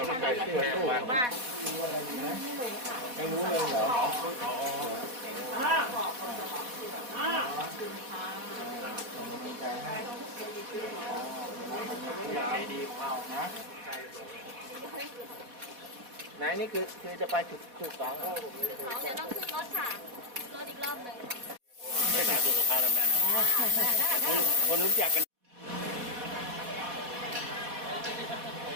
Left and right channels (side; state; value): left; late; 4.1 ms